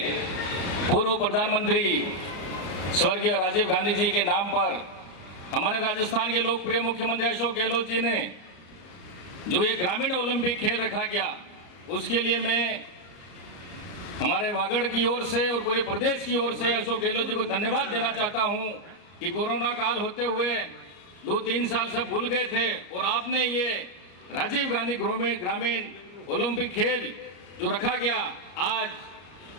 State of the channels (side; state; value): right; late; 33 ms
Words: पूर्व प्रधानमंत्री स्वर्गीय राजीव गांधी जी के नाम पर हमारे राजस्थान के लोकप्रिय मुख्यमंत्री अशोक गहलोत जी ने जो ये ग्रामीण ओलंपिक खेल रखा गया, उसके लिए मैं हमारे वागड़ की ओर से और पूरे प्रदेश की ओर से अशोक गहलोत जी को धन्यवाद देना चाहता हूं कि कोरोना काल होते हुए 2-3 साल सब भूल गए थे और आपने ये राजीव गांधी ग्रामीण ओलंपिक खेल जो रखा गया, आज